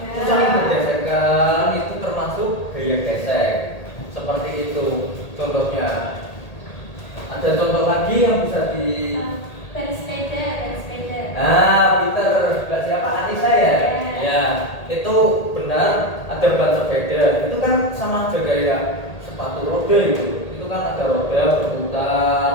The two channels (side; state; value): right; late; 1.8 ms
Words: Itu saling bergesekan, itu termasuk gaya gesek. Seperti itu contohnya. Ada contoh lagi yang bisa di Bersepeda. Nah, Peter, sebelah siapa? Anissa ya? Ya, itu benar ada ban sepeda. Itu kan sama aja kayak sepatu roda itu. Itu kan ada roda berputar,